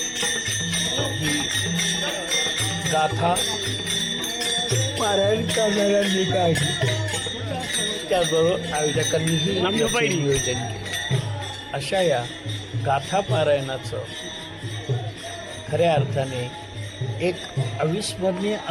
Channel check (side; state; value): both; identical; correlation 1.00